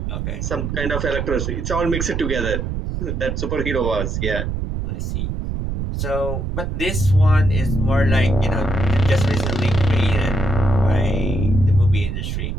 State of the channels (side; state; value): right; noise; rumble, 3 dB below the sound